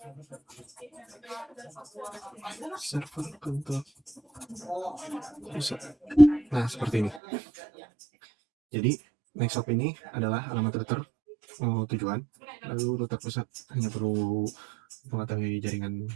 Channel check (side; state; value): left; drops out; at 7.2 s